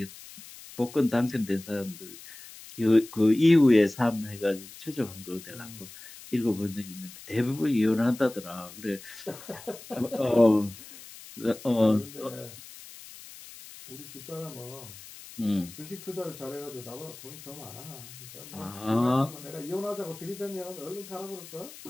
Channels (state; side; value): noise; left; hiss, 17 dB below the sound